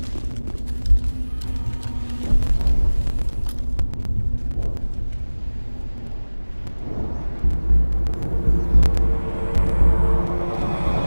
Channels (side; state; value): both; inverted; correlation -1.00